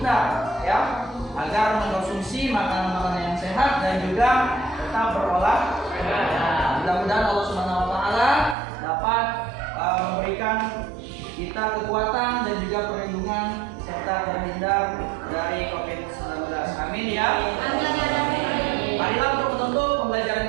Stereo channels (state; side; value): drops out; left; at 8.6 s